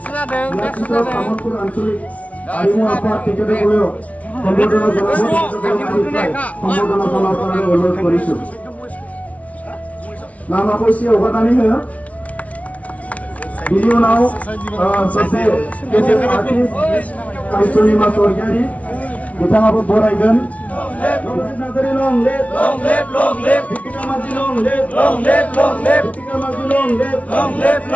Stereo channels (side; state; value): right; late; 0.067 ms